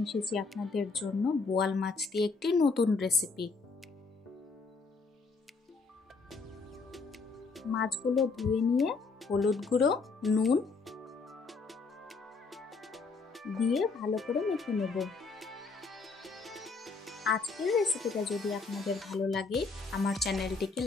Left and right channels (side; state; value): right; quieter; 4.3 dB